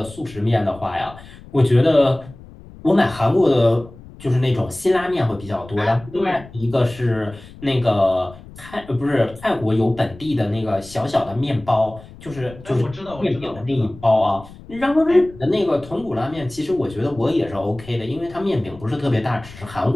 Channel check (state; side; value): noise; left; rumble, 19 dB below the sound